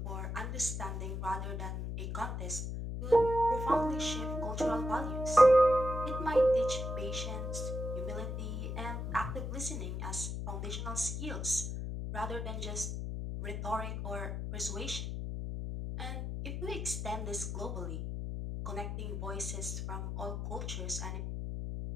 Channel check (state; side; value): noise; left; hum, 4 dB below the sound